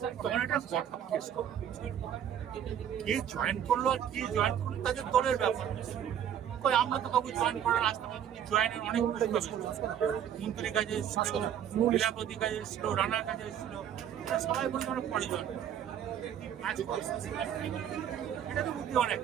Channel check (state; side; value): quieter; left; 9.6 dB